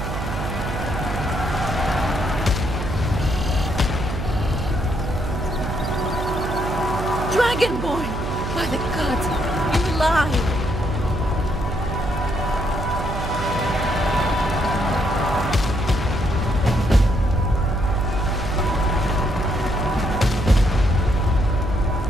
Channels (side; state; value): right; noise; hum, 4 dB below the sound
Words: Dragonborn! By the gods, you're alive!